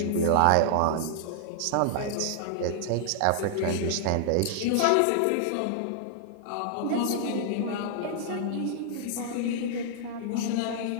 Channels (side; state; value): both; different; correlation -0.01